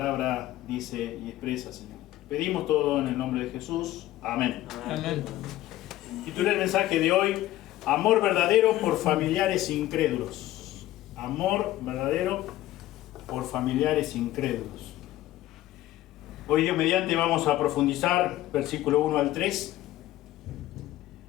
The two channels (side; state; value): right; quieter; 15.1 dB